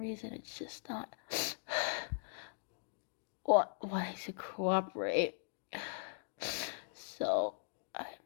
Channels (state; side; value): silent; right; digital silence